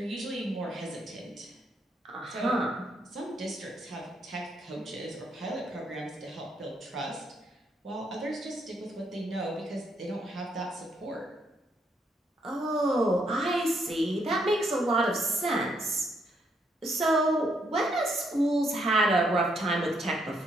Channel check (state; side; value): normal; both; correlation 0.74